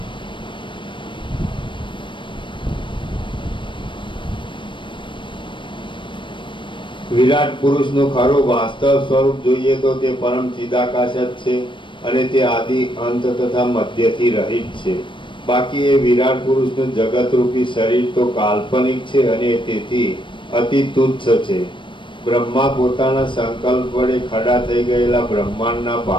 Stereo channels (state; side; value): late; right; 0.24 ms